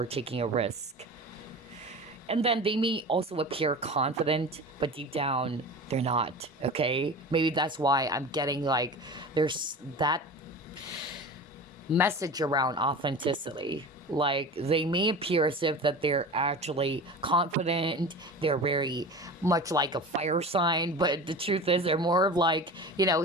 taking a risk. And then they may also appear confident, but deep down they're not. Okay, maybe that's why I'm getting like there's that message around authenticity. Like they may appear as if that they're actually confident, they're very much like a fire sign, but the truth is they're more of like,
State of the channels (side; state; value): both; normal; correlation 0.33